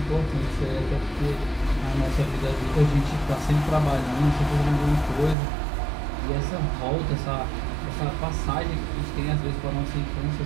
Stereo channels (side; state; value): left; drops out; at 5.4 s